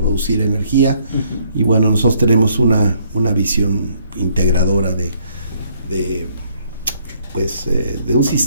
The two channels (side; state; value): both; inverted; correlation -0.67